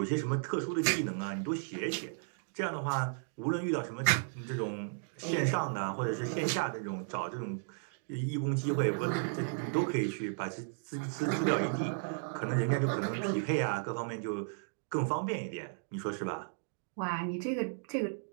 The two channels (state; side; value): silent; left; digital silence